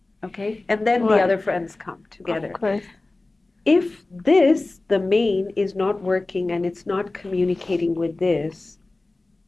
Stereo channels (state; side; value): quieter; right; 3.1 dB